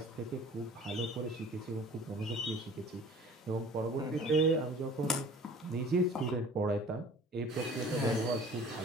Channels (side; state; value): both; normal; correlation 0.47